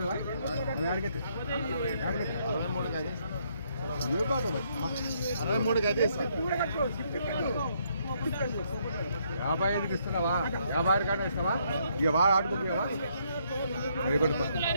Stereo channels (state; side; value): inverted; both; correlation -0.71